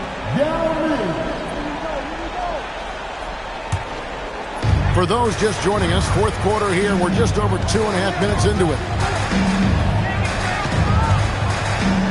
For those just joining us, fourth quarter here. We're just over 2.5 minutes into it.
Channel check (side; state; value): both; identical; correlation 1.00